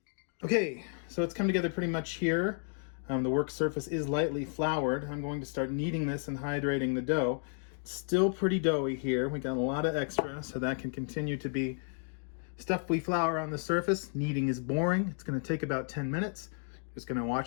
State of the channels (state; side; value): silent; right; 56 dB below the other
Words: Okay, so it's come together pretty much here. The work surface is lightly floured. I'm going to start kneading this and hydrating the dough. It's still pretty doughy here. We got a lot of extra, so that can continue to be stuffy flour on the surface. Kneading is boring. It's going to take about 10 minutes. Just going to